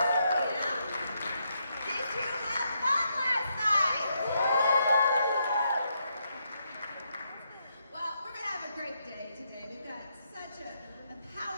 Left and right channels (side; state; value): both; inverted; correlation -0.79